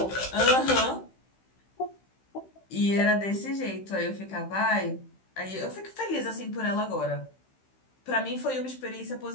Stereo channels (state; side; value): late; right; 15 ms